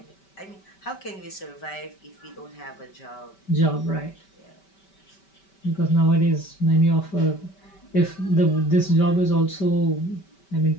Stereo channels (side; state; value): right; late; 5.2 ms